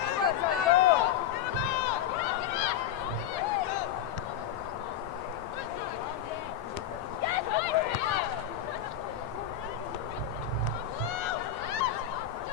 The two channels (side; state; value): right; quieter; 9.8 dB